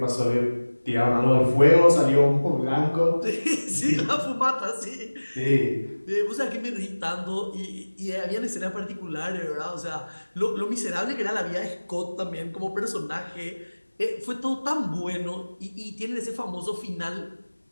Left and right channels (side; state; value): both; inverted; correlation -1.00